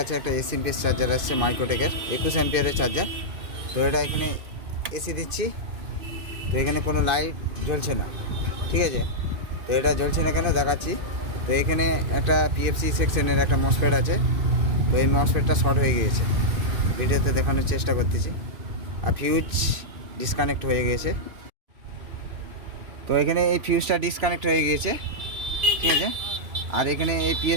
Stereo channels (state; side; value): late; left; 2.6 ms